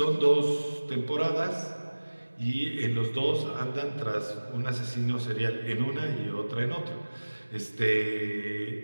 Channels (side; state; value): both; inverted; correlation -1.00